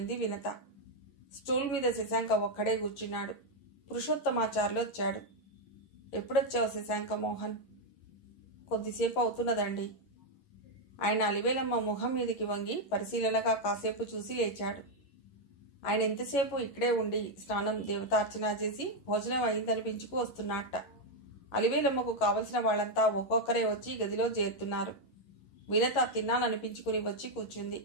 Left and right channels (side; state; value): right; late; 11 ms